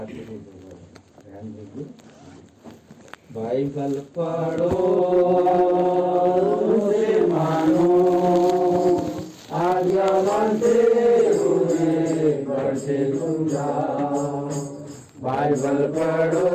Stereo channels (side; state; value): both; identical; correlation 1.00